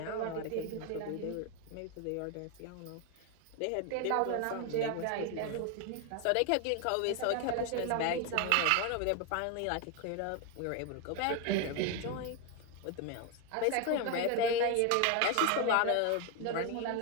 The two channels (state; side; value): different; both; correlation 0.01